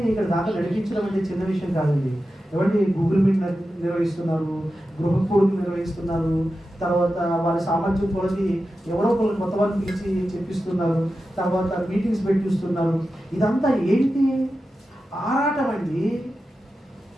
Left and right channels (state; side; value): normal; both; correlation 0.92